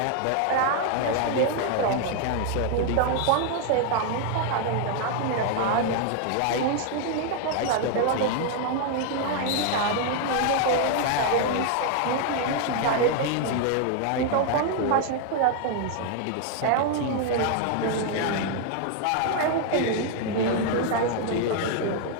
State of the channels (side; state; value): both; different; correlation 0.00